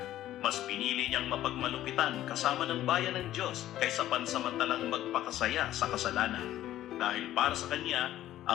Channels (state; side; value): quieter; right; 13.4 dB